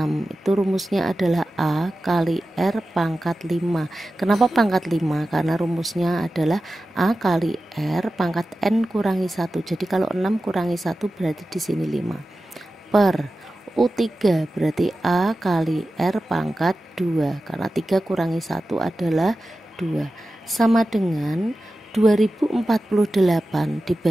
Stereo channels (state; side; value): normal; both; correlation 0.94